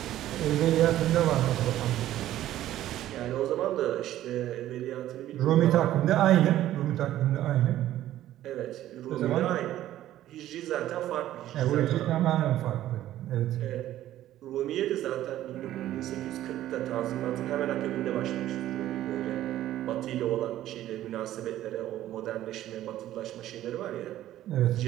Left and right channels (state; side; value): quieter; left; 13.4 dB